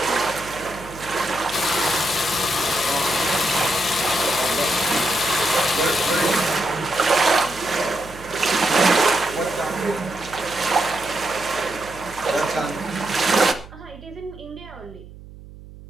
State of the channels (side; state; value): right; noise; hum, 18 dB below the sound